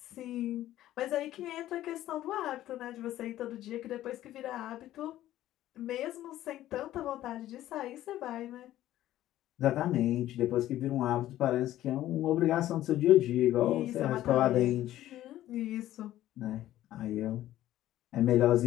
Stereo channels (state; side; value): quieter; right; 13.8 dB